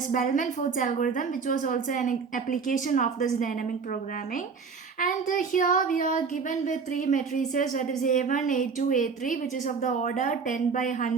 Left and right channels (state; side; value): quieter; left; 5.4 dB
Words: Bellman-Ford's algorithm, which was also an application of this dynamic programming. And here we are given with three matrices, that is A1, A2, A3, which is of the order 10 by